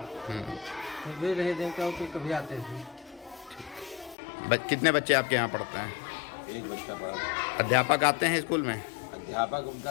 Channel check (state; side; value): drops out; right; at 4.2 s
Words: फिर भी नहीं देखता हूँ कि कभी आते हैं। कितने बच्चे आपके यहाँ पढ़ते हैं? एक बच्चा पढ़ा। अध्यापक आते हैं स्कूल में? अध्यापक उनका